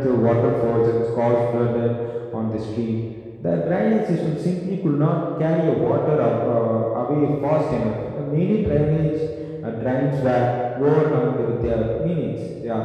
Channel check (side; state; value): both; identical; correlation 1.00